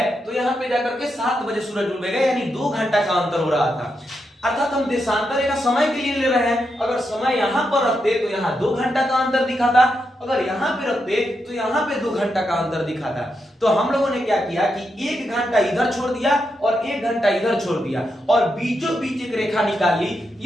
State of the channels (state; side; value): normal; both; correlation 0.84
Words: तो यहाँ पे जाकर के 7 बजे सूरज डूबेगा। यानी 2 घंटा का अंतर हो रहा था। अर्थात हम देशांतर रेखा समय के लिए ले रहे हैं। अगर समय यहां पर रखते तो यहां 2 घंटा का अंतर दिखाता, अगर यहां पे रखते तो यहां पे 2 घंटा का अंतर दिखाता। तो हम लोगों ने क्या किया कि 1 घंटा इधर छोड़ दिया और 1 घंटा इधर छोड़ दिया, और बीचों बीच एक रेखा निकाली।